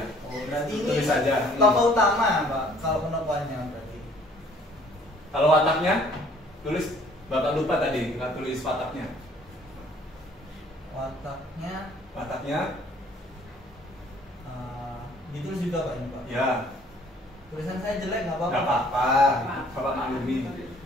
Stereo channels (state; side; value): normal; both; correlation 0.57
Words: Oh, berarti ini Tulis saja. tokoh utama, Pak. Kalau penokohannya berarti. Kalau wataknya, tulis. Bapak lupa tadi, nggak tulis wataknya. Wataknya Wataknya, ditulis juga, Pak, ini, Pak. ya Tulisan saya jelek nggak apa-apa. nggak apa-apa. Bapak maklumi.